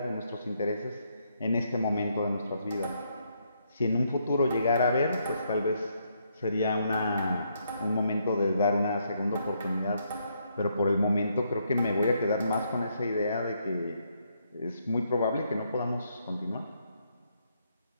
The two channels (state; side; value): inverted; both; correlation -0.75